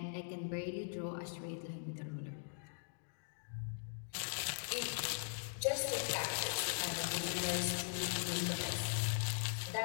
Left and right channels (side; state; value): right; silent; digital silence